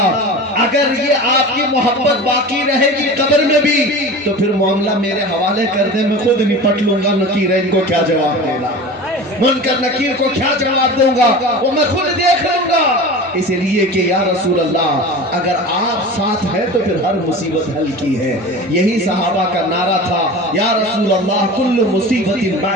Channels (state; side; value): normal; both; correlation 0.34